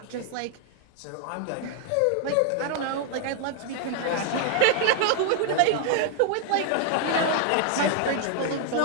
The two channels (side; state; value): both; different; correlation 0.00